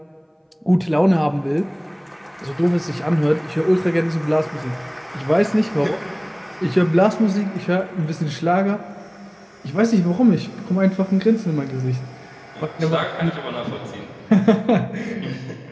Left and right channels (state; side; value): identical; both; correlation 1.00